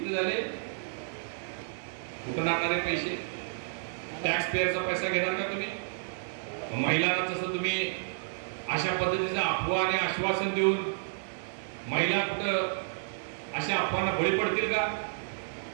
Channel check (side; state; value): left; silent; digital silence